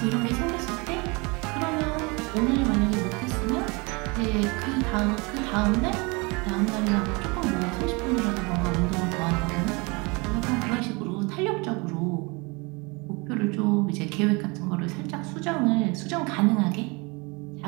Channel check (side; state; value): left; quieter; 27.9 dB